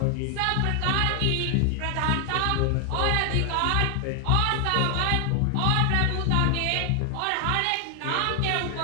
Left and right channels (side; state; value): both; different; correlation 0.00